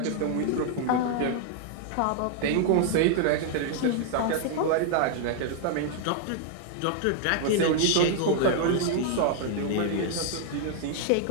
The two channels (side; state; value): both; different; correlation 0.00